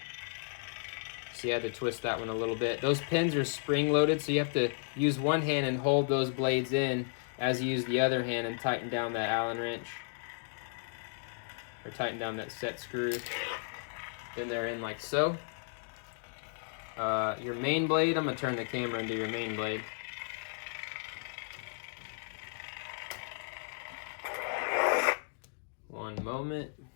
So you had to twist that one a little bit. Those pins are spring loaded, so you have to use one hand and hold those blades in as you use the other hand and tighten down that Allen wrench. Or tighten down that set screw. Then they're in like so. Your main blade, I'm gonna turn the camera into your main blade. One moment.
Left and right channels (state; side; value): silent; right; digital silence